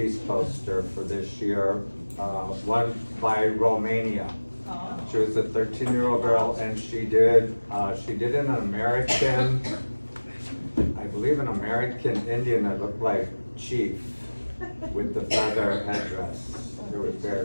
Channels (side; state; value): both; inverted; correlation -1.00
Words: poster for this year, one by Romania. She was a 13-year-old girl, and she did an American, I believe an American Indian that looked like Chief with the feather headdress. It was very,